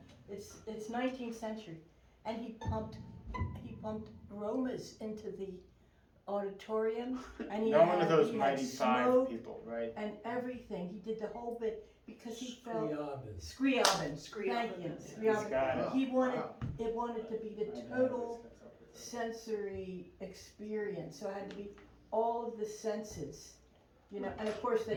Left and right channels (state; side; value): identical; both; correlation 1.00